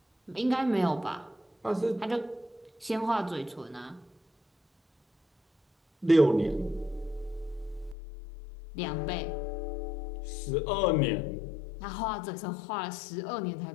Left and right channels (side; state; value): right; drops out; at 8.0 s